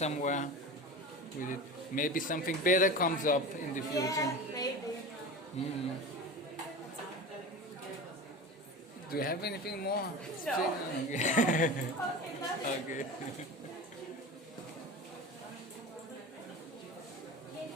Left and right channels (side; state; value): both; normal; correlation 0.31